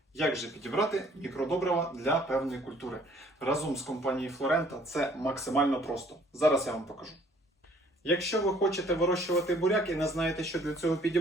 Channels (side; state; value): both; normal; correlation 0.59